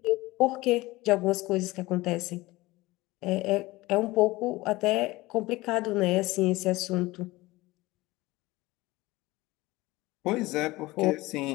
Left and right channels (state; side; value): quieter; right; 20.0 dB